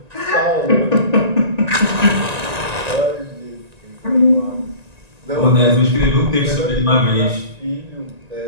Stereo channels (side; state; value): left; late; 1.9 ms